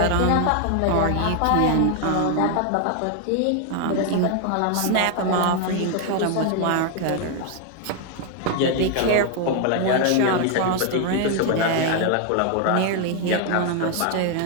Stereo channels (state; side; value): different; both; correlation 0.00